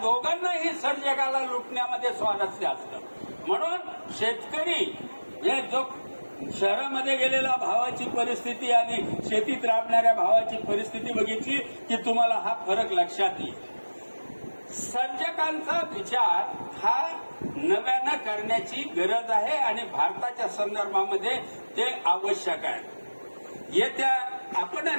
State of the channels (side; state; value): both; inverted; correlation -1.00